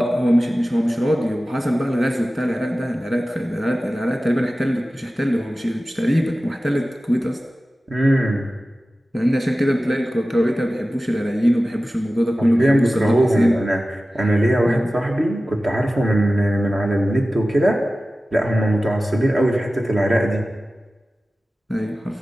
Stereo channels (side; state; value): both; normal; correlation 0.95